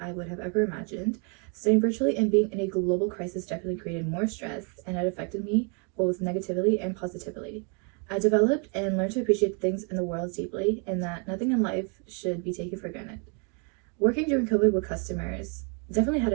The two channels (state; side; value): quieter; left; 36.7 dB